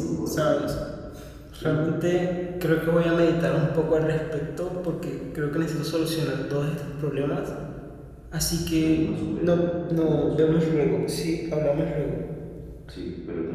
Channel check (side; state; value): both; identical; correlation 1.00